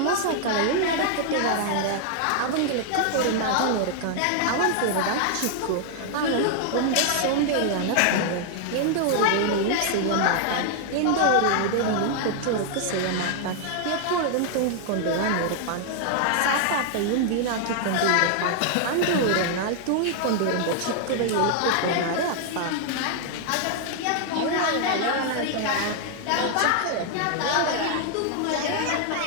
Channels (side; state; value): both; different; correlation 0.00